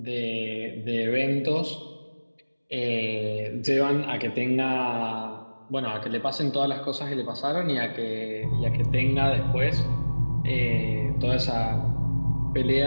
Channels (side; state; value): both; inverted; correlation -1.00